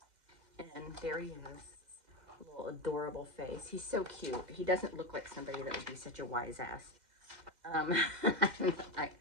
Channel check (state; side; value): late; left; 2.1 ms